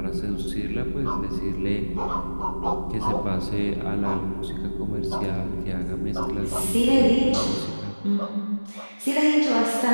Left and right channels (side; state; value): both; inverted; correlation -1.00